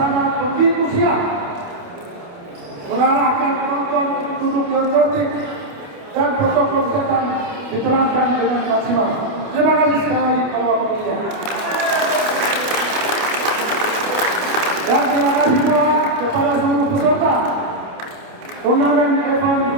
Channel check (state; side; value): late; left; 28 ms